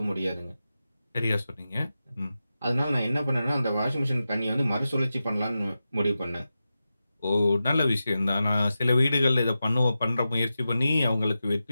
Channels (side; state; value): both; inverted; correlation -0.92